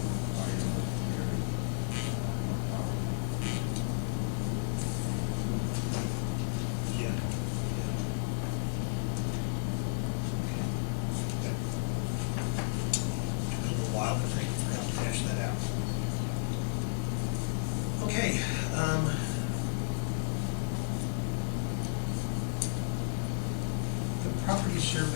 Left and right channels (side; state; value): right; silent; digital silence